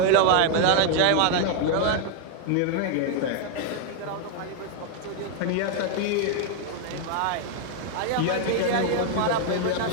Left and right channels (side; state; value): both; different; correlation 0.00